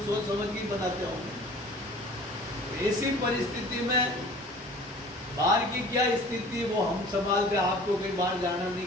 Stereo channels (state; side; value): normal; both; correlation 0.46